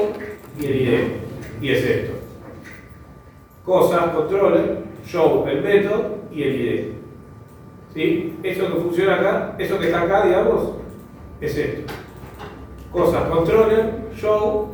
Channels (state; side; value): identical; both; correlation 1.00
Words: y el ID, y es esto. Cosas, controller, show, el método y el ID. ¿Sí? Eso que funciona acá, eso que está acá, digamos, es esto. Cosas, controller,